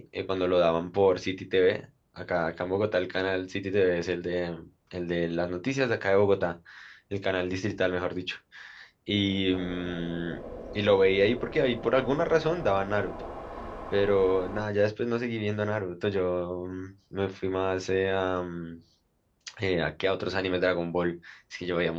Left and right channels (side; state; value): both; identical; correlation 1.00